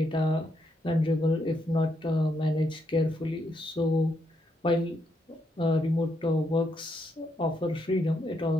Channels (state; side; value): normal; both; correlation 0.78